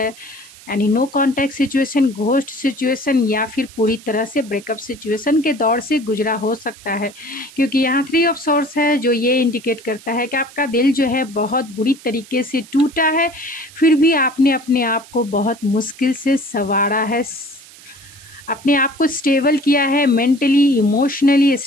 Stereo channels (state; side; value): noise; right; hiss, 21 dB below the sound